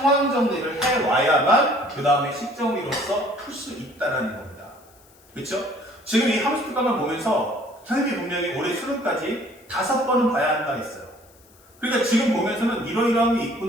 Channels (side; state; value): left; noise; hiss, 28 dB below the sound